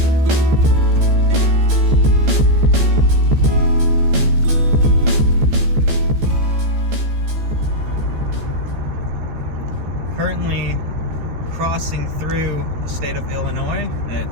Currently crossing through the state of Illinois. It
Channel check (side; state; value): left; late; 14 ms